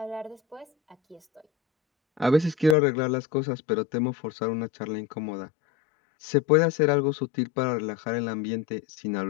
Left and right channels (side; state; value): right; drops out; at 2.8 s